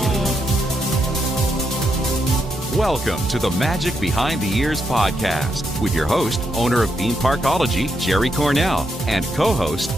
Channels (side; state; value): both; normal; correlation 0.80